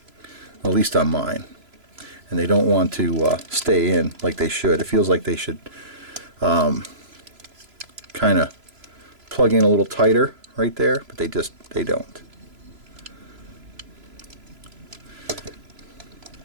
at least on mine, and they don't want to stay in like they should. It feels like they should kind of plug in a little tighter right there, but they don't.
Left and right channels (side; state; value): left; late; 3.0 ms